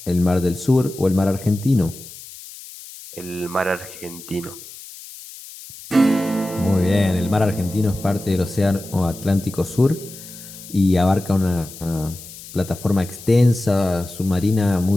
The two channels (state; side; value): noise; left; hiss, 16 dB below the sound